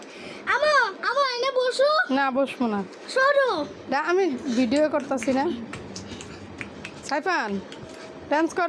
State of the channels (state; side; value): identical; both; correlation 1.00